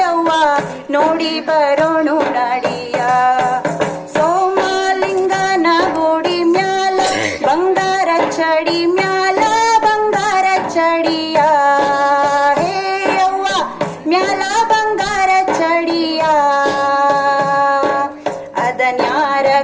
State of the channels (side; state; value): both; identical; correlation 1.00